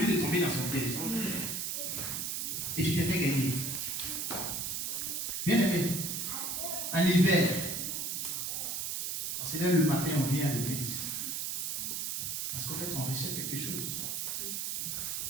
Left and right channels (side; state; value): right; noise; hiss, 2 dB below the sound